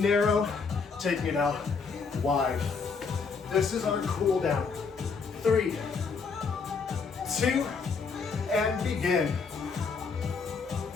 taking it out wide. This is our cool down. 3, 2, and begin.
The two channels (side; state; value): right; quieter; 5.1 dB